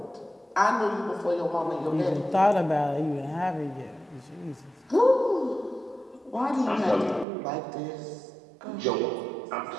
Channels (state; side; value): drops out; left; at 7.2 s